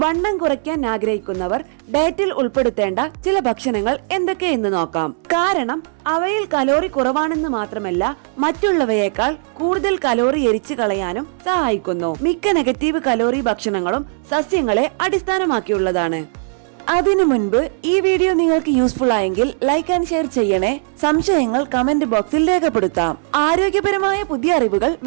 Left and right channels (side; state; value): left; silent; digital silence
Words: വണ്ണം കുറയ്ക്കാൻ ആഗ്രഹിക്കുന്നവർ ഡയറ്റിൽ ഉൾപ്പെടുത്തേണ്ട ചില ഭക്ഷണങ്ങൾ എന്തൊക്കെയെന്ന് നോക്കാം. കാരണം അവയിൽ കലോറി കുറവാണെന്ന് മാത്രമല്ല, മറ്റുള്ളവയേക്കാൾ കൂടുതൽ കലോറി എരിച്ചു കളയാനും സഹായിക്കുന്നു. മിക്ക നെഗറ്റീവ് കലോറി ഭക്ഷണങ്ങളും സസ്യങ്ങളെ അടിസ്ഥാനമാക്കിയുള്ളതാണ്. അതിനു മുൻപ് ഈ വീഡിയോ നിങ്ങൾക്ക് യൂസ്ഫുൾ ആയെങ്കിൽ ലൈക്ക് ആൻഡ് ഷെയർ ചെയ്യണേ. സംശയങ്ങൾ കമന്റ് ബോക്സിൽ രേഖപ്പെടുത്താം. ആരോഗ്യപരമായ പുതിയ അറിവുകൾ